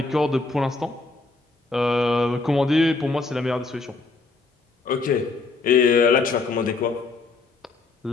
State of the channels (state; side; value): quieter; right; 3.8 dB